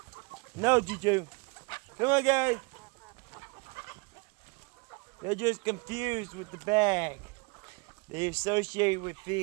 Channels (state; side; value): quieter; left; 29.6 dB